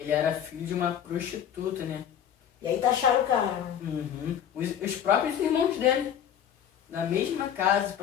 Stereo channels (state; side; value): quieter; right; 9.3 dB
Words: ele era filho de uma prostituta, né? E aí taxaram o cara. Uhum. Os próprios irmãos dele, na mesma casa, o